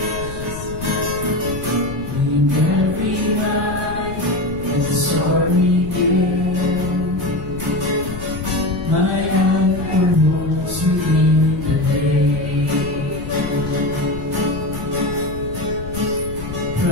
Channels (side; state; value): left; noise; rumble, 10 dB below the sound